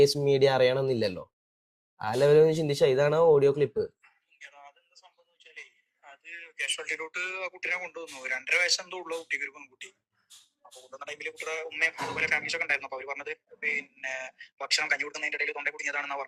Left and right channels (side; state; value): both; identical; correlation 1.00